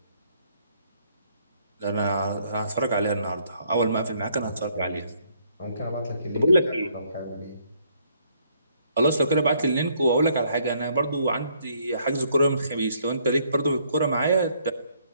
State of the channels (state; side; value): inverted; both; correlation -0.67